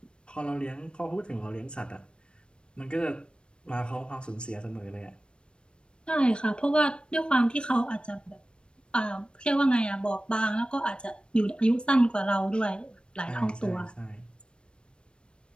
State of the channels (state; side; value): late; right; 0.055 ms